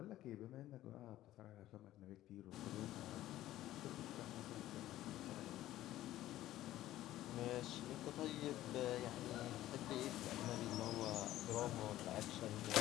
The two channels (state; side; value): quieter; right; 14.4 dB